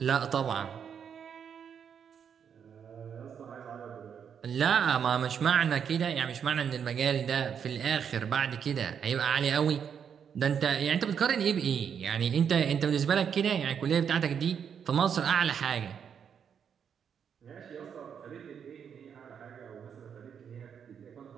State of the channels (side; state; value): left; quieter; 7.6 dB